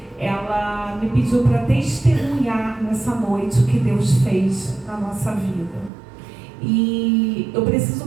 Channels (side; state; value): left; drops out; at 5.9 s